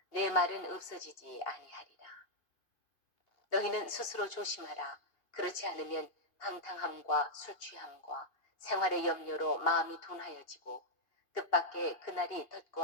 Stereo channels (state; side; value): late; right; 2.5 ms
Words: 내 말은 없어지지 아니하리라. 너희는 스스로 조심하라. 그렇지 않으면 방탕함과 술취함과 생활의 염려로 마음이 둔하여지고 뜻밖의 그날이